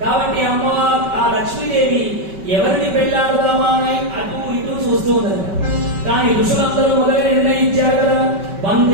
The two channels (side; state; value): left; late; 5.2 ms